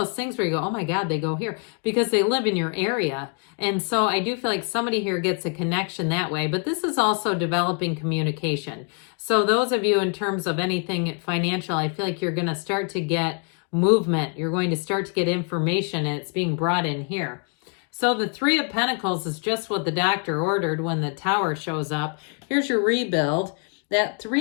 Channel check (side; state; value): right; quieter; 39.8 dB